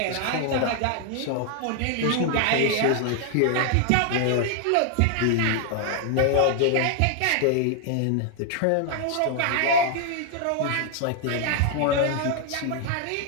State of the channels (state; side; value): different; both; correlation 0.00